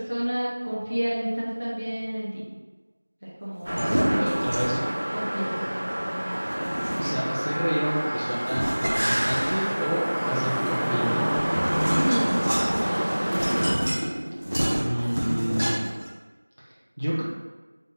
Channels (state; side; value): inverted; both; correlation -1.00